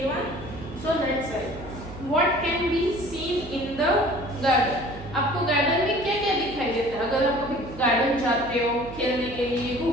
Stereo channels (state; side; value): noise; right; hum, 14 dB below the sound